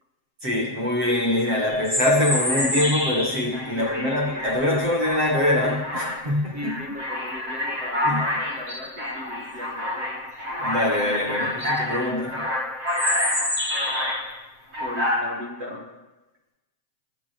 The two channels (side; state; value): left; late; 7.6 ms